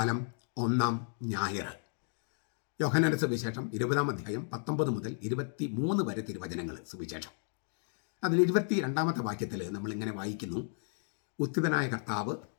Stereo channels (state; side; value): silent; right; 55 dB below the other